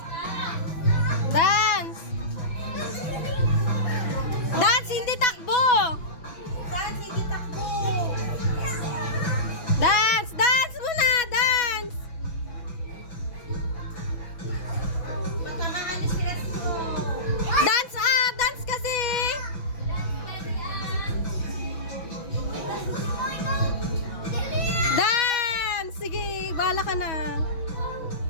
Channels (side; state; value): right; late; 6.0 ms